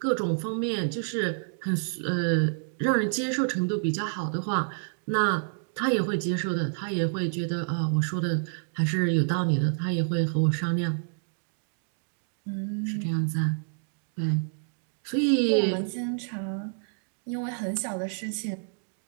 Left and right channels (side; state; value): left; silent; digital silence